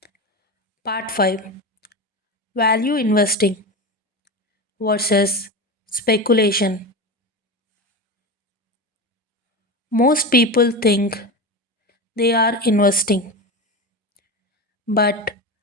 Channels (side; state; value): both; normal; correlation 0.23